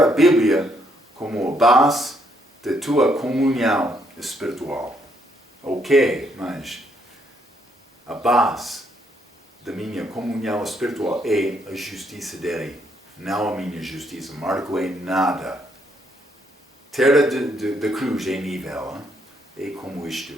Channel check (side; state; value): both; normal; correlation 0.72